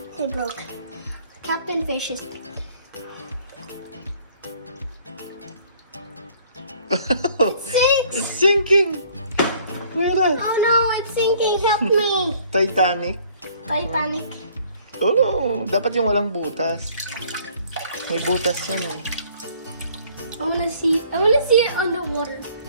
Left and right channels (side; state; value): both; inverted; correlation -0.58